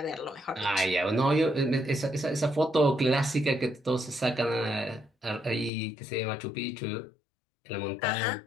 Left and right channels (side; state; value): right; drops out; at 5.7 s